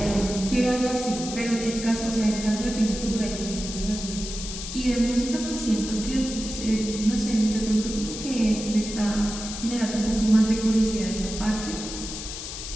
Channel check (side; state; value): left; noise; hiss, 8 dB below the sound